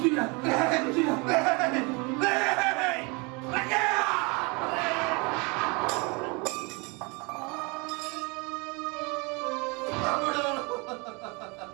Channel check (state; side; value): quieter; left; 29.3 dB